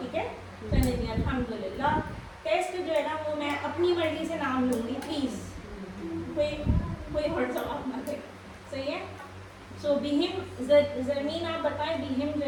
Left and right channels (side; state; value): both; identical; correlation 1.00